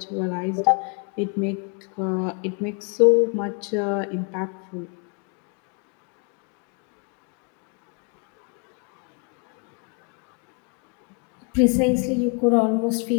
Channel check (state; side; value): quieter; right; 36.3 dB